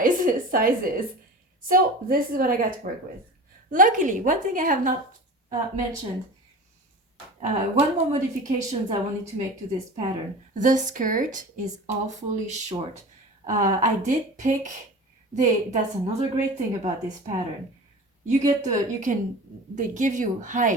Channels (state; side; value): normal; both; correlation 0.35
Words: So this is what I got to work with. Luckily, one thing I have not mentioned, one more modifications I wanted to make to this pattern. The skirt is awfully short. I did pick that's another great thing about this pattern. They give you